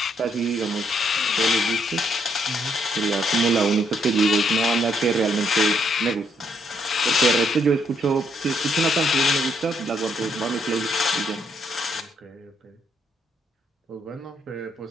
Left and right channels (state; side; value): normal; both; correlation 0.73